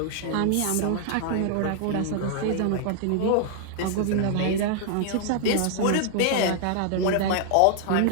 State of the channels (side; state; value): both; different; correlation 0.00